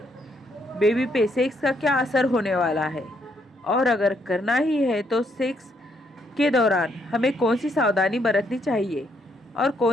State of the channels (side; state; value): both; normal; correlation 0.73